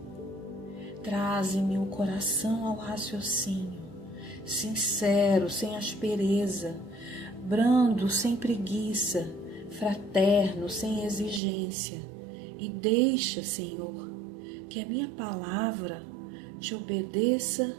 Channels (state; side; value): drops out; left; at 11.4 s